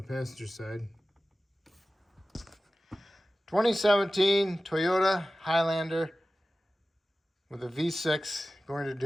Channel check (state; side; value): normal; both; correlation 0.96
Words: passenger side. 2017 Toyota Highlander with a V6, going to